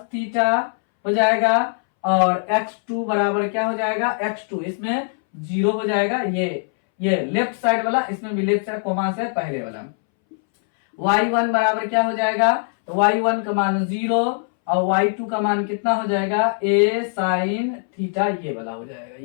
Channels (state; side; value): silent; right; 63 dB below the other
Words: थीटा हो जाएगा, और x2 बराबर क्या हो जाएगा, x2 इसमें 0 हो जाएगा, ये लेफ्ट साइड वाला, इसमें भी लेफ्ट साइड कोमा से पहले वाला। y1 बराबर क्या हो जाएगा, तो y1 का मान 0, और y2 का मान कितना हो जाएगा, a साइन थीटा, ये वाला हो जाएगा,